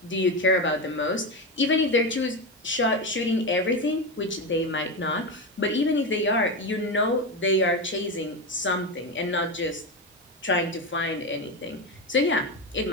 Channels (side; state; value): both; normal; correlation 0.16